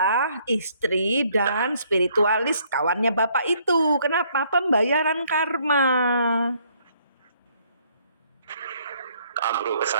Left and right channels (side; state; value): both; inverted; correlation -0.66